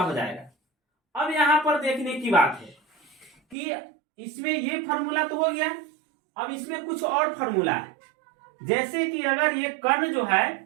जाएगा। अब यहां पर देखने की बात है कि इसमें ये फॉर्मूला तो हो गया, अब इसमें कुछ और फॉर्मूला है, जैसे कि अगर ये कर्ण जो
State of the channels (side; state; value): left; drops out; at 3.6 s